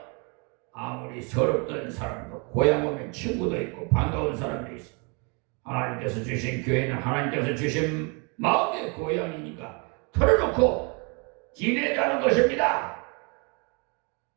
아무리 서럽던 사람도 고향 오면 친구도 있고 반가운 사람도 있어. 하나님께서 주신 교회는 하나님께서 주신 마음의 고향이니까 털어놓고 지내자는 것입니다.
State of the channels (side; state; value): left; quieter; 33.3 dB